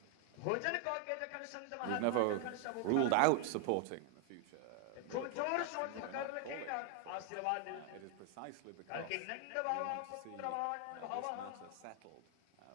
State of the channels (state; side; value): different; both; correlation 0.00